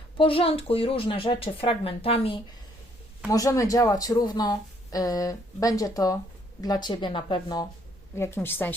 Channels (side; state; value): both; normal; correlation 0.66